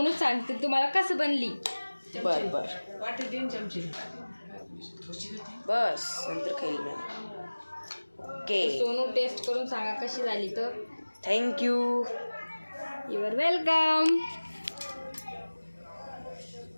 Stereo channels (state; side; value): inverted; both; correlation -1.00